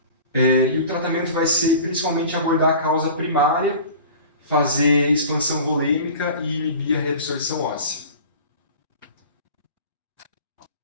E o tratamento vai ser principalmente abordar a causa primária, fazer expansão volêmica e inibir a reabsorção óssea.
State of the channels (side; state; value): both; inverted; correlation -0.40